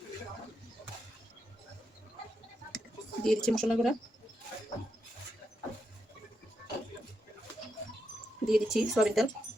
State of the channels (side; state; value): both; normal; correlation 0.83